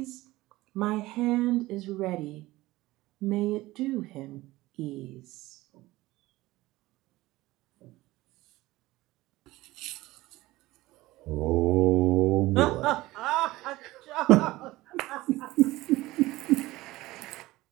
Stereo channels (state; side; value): quieter; left; 18.5 dB